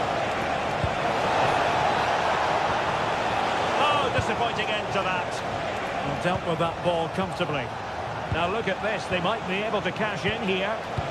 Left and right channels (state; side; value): identical; both; correlation 1.00